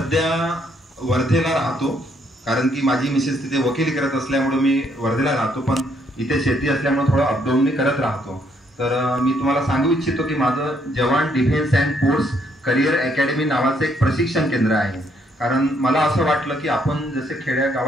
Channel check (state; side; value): normal; both; correlation 0.71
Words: वर्धेला राहतो, कारण की माझी मिसेस तिथे वकिली करत असल्यामुळे मी वर्धेला राहतो, पण इथे शेती असल्यामुळे थोडं अपडाऊन मी करत राहतो. तर मी तुम्हाला सांगू इच्छितो की माझं जवान defence and force career academy नावाचं एक प्रशिक्षण केंद्र आहे. कारण मला असं वाटलं की आपण जसे खेड्या